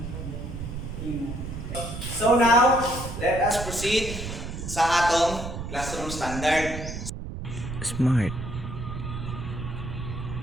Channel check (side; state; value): right; noise; rumble, 7 dB below the sound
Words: So now, let us proceed sa atong classroom standard. Smart.